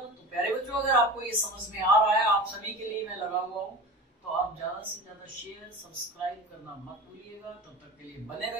प्यारे बच्चों, अगर आपको ये समझ में आ रहा है, आप सभी के लिए मैं लगा हुआ हूं, तो आप ज्यादा से ज्यादा शेयर सब्सक्राइब करना मत भूलिएगा। तब तक के लिए बने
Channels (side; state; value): both; normal; correlation 0.33